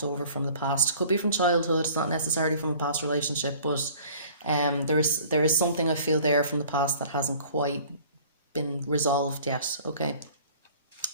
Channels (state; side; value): inverted; both; correlation -0.50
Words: over from the past. Could be from childhood, it's not necessarily from a past relationship, but there is something I feel there from the past that hasn't quite been resolved yet. Okay.